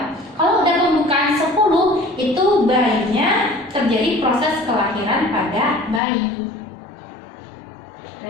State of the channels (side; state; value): right; drops out; at 6.0 s